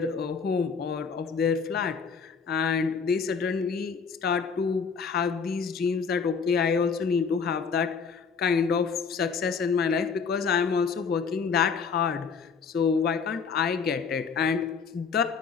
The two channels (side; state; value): right; quieter; 5.7 dB